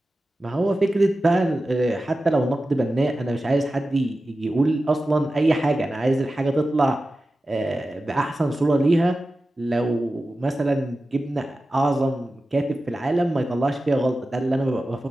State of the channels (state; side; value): normal; both; correlation 0.94